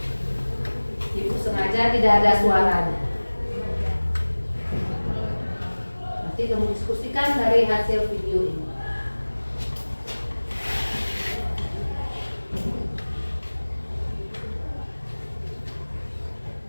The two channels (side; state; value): both; inverted; correlation -1.00